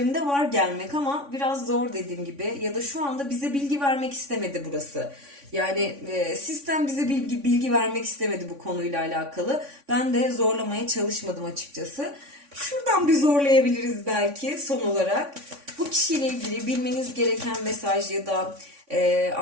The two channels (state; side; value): late; left; 3.5 ms